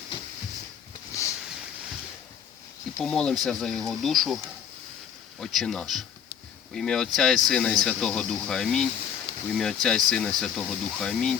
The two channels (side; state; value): right; quieter; 8.4 dB